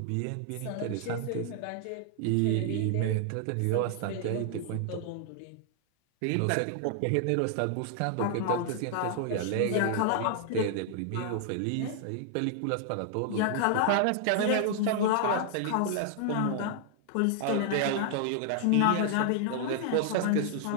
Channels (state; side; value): different; both; correlation 0.00